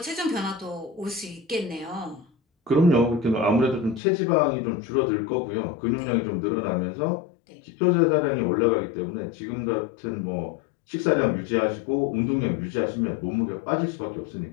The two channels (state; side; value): drops out; right; at 4.0 s